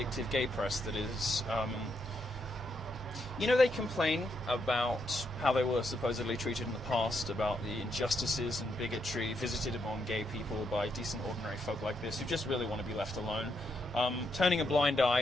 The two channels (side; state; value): both; normal; correlation 0.79